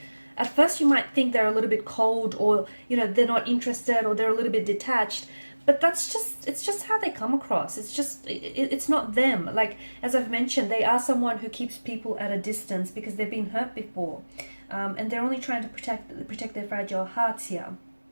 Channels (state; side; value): inverted; both; correlation -1.00